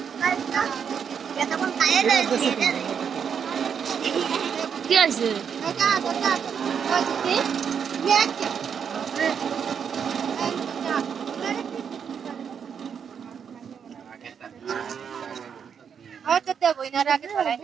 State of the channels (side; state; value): left; quieter; 7.3 dB